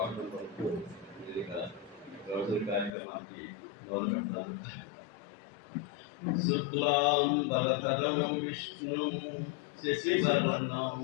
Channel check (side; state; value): right; drops out; at 3.0 s